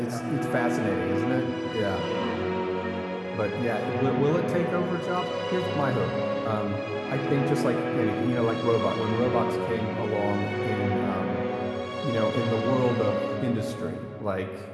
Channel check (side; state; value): both; identical; correlation 1.00